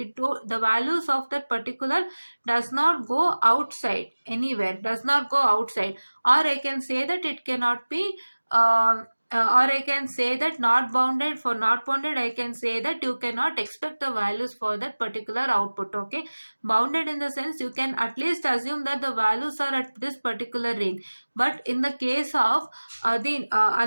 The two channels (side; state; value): both; inverted; correlation -1.00